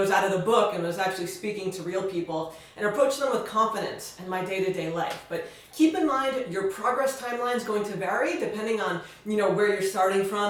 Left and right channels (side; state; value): both; identical; correlation 1.00